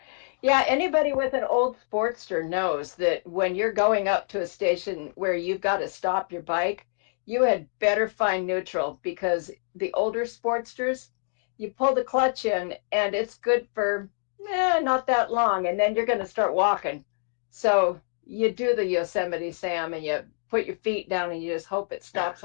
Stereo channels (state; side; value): silent; right; digital silence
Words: yeah, anybody with an old Sportster knows that when you're going up to a station where you've got to stop your bike, you had better find neutral because the older Sportsters, you pull the clutch in and it's good for not that long, and then you're going to start walking. So you do the Yosemite Sam and you put your feet down and you just hope it stops